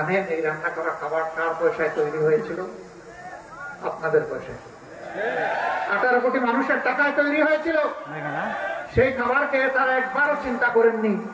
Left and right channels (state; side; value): identical; both; correlation 1.00